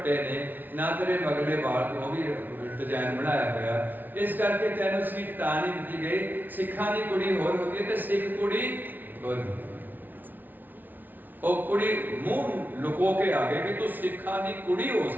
ਨੇ, ਨਾ ਤੇਰੇ ਮਗਲੇ ਵਾਲ, ਉਹ ਵੀ ਡਿਜ਼ਾਈਨ ਬਣਾਇਆ ਹੋਇਆ, ਇਸ ਕਰਕੇ ਤੈਨੂੰ ਸੀਟ ਤਾਂ ਨਹੀਂ ਦਿੱਤੀ ਗਈ। ਸਿੱਖਾਂ ਦੀ ਕੁੜੀ ਹੋਰ ਹੁੰਦੀ ਹੈ ਤੇ ਸਿੱਖ ਕੁੜੀ ਹੋਰ ਹੁੰਦੀ। ਉਹ ਕੁੜੀ ਮੂੰਹ ਲੁਕੋ ਕੇ ਆ ਗਈ ਕਿ ਤੂੰ ਸਿੱਖਾਂ ਦੀ ਕੁੜੀ ਹੋ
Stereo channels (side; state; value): left; late; 0.086 ms